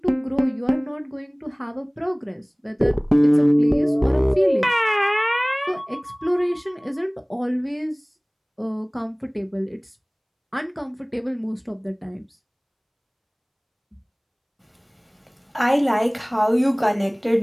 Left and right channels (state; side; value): identical; both; correlation 1.00